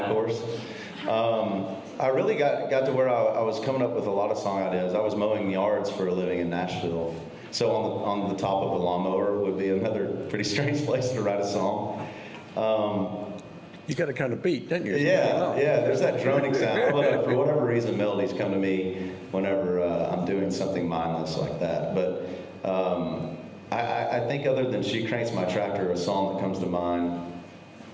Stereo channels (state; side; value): identical; both; correlation 1.00